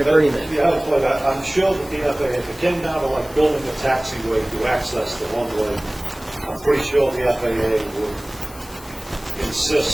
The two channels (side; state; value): left; noise; hiss, 20 dB below the sound